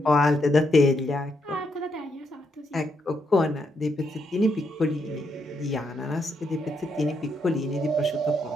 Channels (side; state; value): both; normal; correlation 0.78